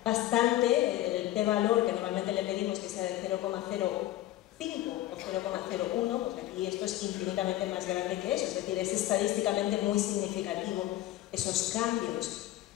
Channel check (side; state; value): right; quieter; 14.7 dB